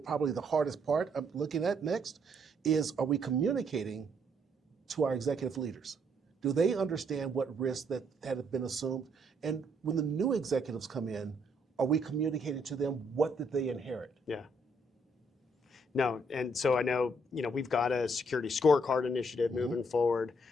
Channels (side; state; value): both; normal; correlation 0.71